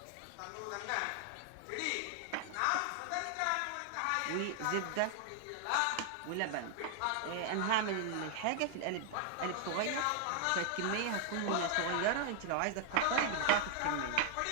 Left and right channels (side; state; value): both; different; correlation 0.00